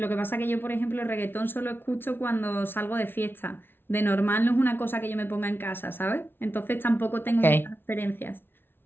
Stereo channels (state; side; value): late; right; 0.11 ms